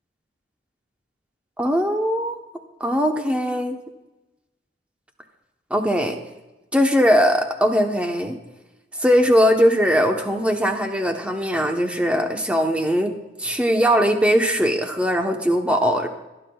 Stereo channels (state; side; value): normal; both; correlation 0.77